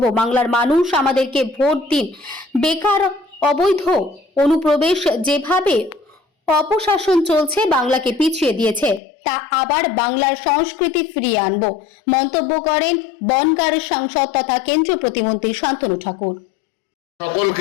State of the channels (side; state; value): right; drops out; at 9.0 s